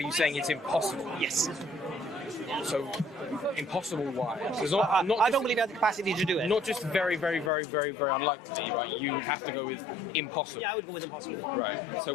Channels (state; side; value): drops out; right; at 7.5 s